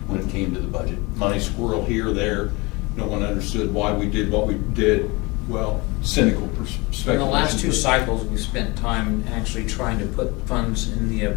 when it came to the budget. Money squirrel here, there, no one understood why we did what we did. Well, cynical In perspective. the last 2 cycles, we spent time actually trying to put funds in the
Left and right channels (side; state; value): right; quieter; 25.2 dB